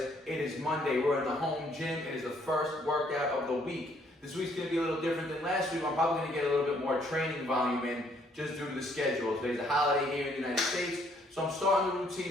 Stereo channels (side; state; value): both; normal; correlation 0.66